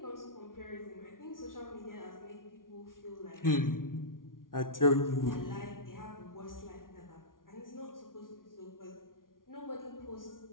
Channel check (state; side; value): late; right; 0.90 ms